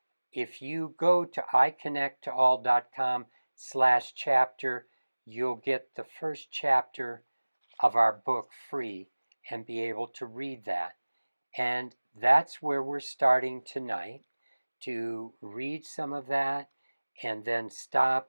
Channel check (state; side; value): inverted; both; correlation -1.00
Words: if you go to iconnecttoall.com/chapter, you'll get the first chapter of our book free and be able to read that. And that's where we're starting tonight, to read some of that and then